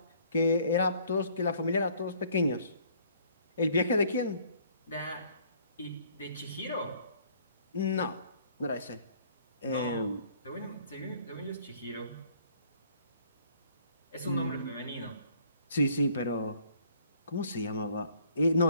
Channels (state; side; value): inverted; both; correlation -0.60